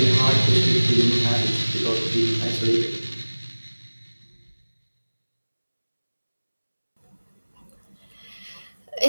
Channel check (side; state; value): both; inverted; correlation -1.00